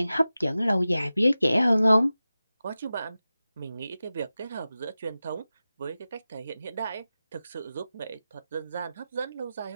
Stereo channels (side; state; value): both; inverted; correlation -0.95